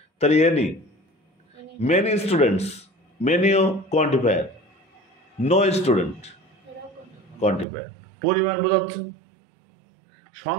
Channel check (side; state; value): left; drops out; at 7.7 s